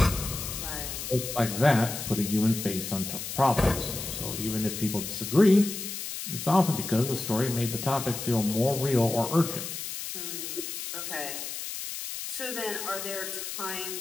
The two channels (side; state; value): left; noise; hiss, 6 dB below the sound